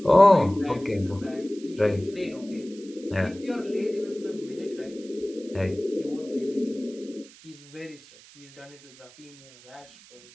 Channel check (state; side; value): noise; right; hiss, 22 dB below the sound